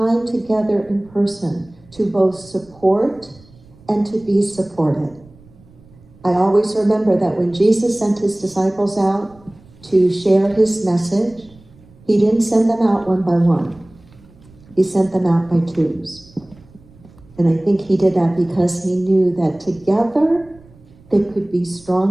together in person to both support and to be supported. I always remember that when Jesus sent his disciples out to share his message, he didn't send them out one by one. He sent them out by twos. And I think he did that because he knew that together they could be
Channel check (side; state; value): right; noise; rumble, 26 dB below the sound